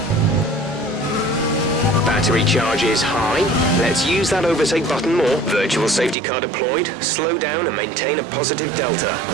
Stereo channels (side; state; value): left; drops out; at 6.2 s